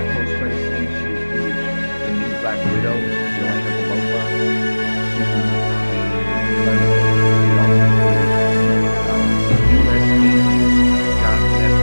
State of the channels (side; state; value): both; inverted; correlation -1.00